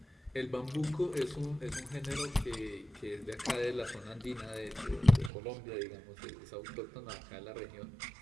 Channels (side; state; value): left; drops out; at 5.3 s